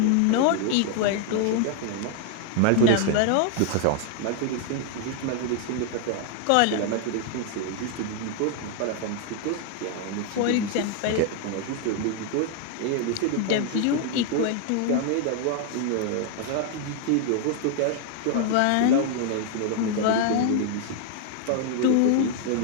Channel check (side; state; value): both; different; correlation 0.00